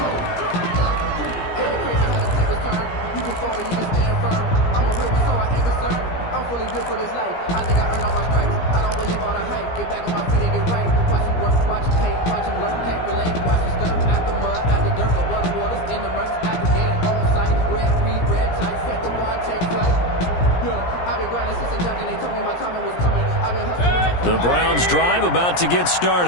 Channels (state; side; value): late; right; 17 ms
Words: For this life, I think I earned all my stripes. I don't believe all the hype. Get back on my feet and get right. Watch him work, watch him hate, watch him learn, can't relate. Watch him skirt at the mud, at the dirt, above the waters, in the murks, at the gate, on sight. Red, green, red tight, set the bar, take flight. Yeah, I've been grinding since a young and they told me my timing was coming. I've been hustling. The Browns drive about to get